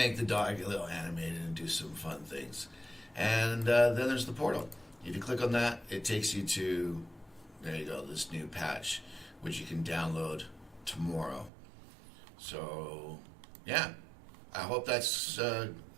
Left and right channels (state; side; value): drops out; left; at 11.5 s